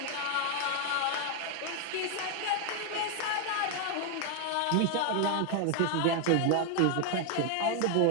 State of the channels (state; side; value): different; both; correlation 0.00